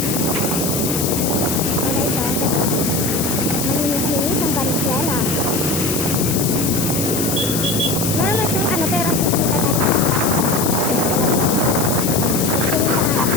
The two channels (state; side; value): noise; left; hiss, 3 dB below the sound